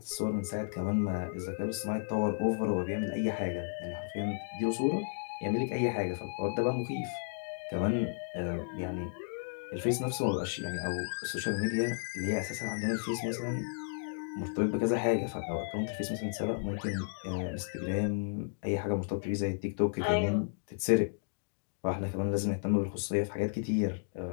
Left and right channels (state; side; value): silent; right; digital silence